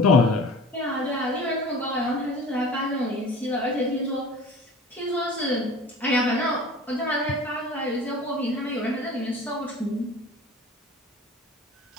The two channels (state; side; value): normal; both; correlation 0.41